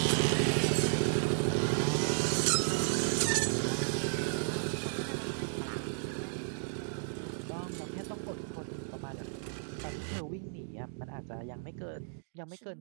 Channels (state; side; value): silent; left; digital silence